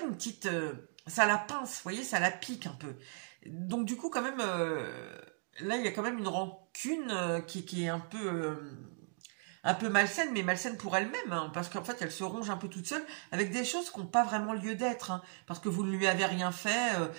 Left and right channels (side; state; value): left; silent; 54 dB below the other